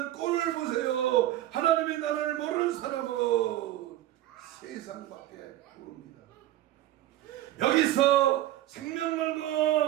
꼴을 보세요. 하나님의 나라를 모르는 사람은 세상밖에 모릅니다. 여기서 생명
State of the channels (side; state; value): left; quieter; 14.1 dB